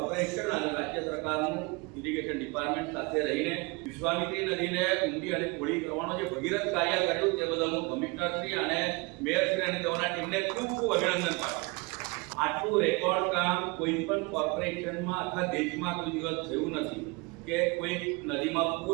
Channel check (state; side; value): quieter; left; 27.4 dB